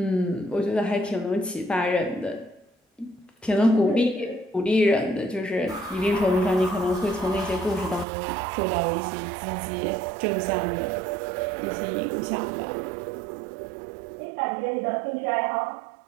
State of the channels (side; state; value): left; drops out; at 8.1 s